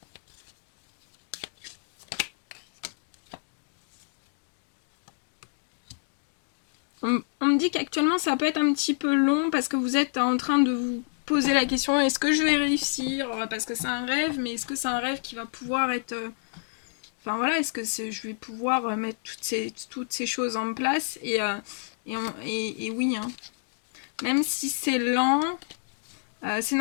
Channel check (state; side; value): silent; right; digital silence